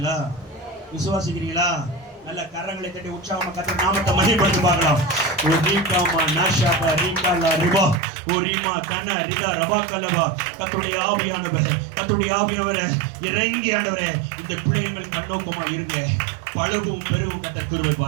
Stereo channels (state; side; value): drops out; left; at 8.0 s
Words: விசுவாசிக்கிறீங்களா? நல்ல கரங்களை தட்டி உற்சாகமா கர்த்தர் நாமத்தை மகிமைப்படுத்தி பார்க்கலாம். ஒரு ரீகாமா நாஷாபா ரீகாலா ரிபா ஓரிமா கன ரிதா ரபா கலவா. கர்த்தருடைய ஆவியானவர், கர்த்தருடைய ஆவியானவரே இறங்கி ஆண்டவரே இந்த பிள்ளைகள் மேல் கண்ணோக்கமா இருங்க. பழகும் பெருகும் கர்த்தர் கிருபை